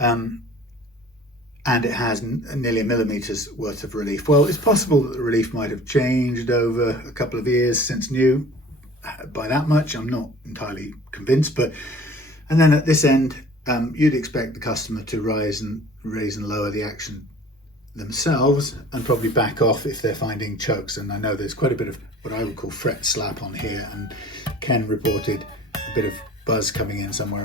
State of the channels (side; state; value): both; normal; correlation 0.47